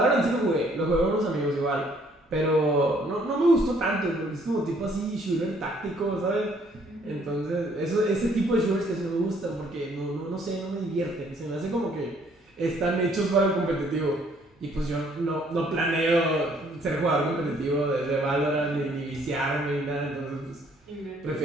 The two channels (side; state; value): both; normal; correlation 0.63